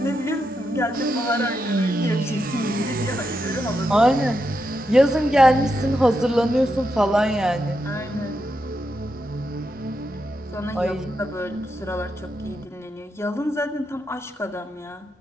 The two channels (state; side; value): normal; both; correlation 0.84